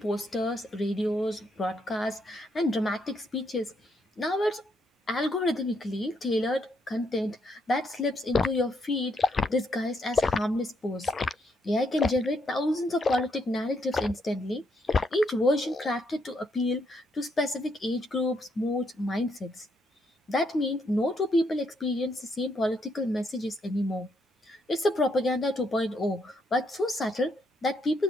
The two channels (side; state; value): both; normal; correlation 0.76